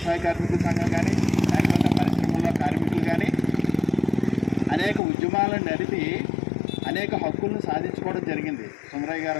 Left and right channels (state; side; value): drops out; right; at 5.0 s